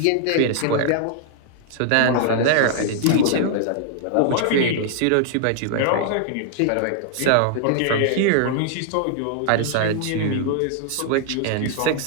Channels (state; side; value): different; both; correlation -0.01